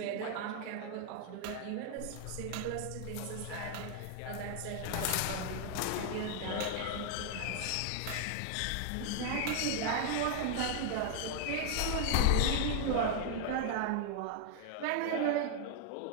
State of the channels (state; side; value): different; both; correlation 0.00